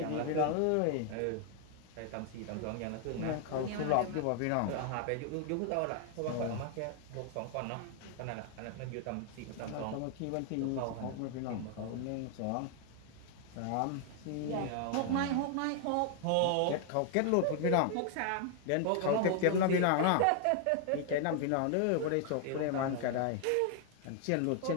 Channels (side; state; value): both; different; correlation 0.00